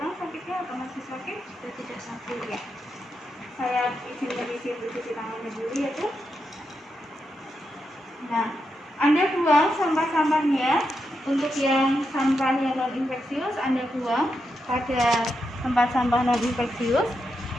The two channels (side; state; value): both; normal; correlation 0.85